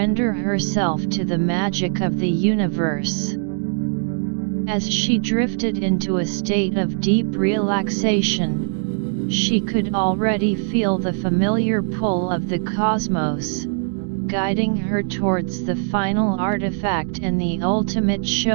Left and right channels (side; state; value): left; silent; 58 dB below the other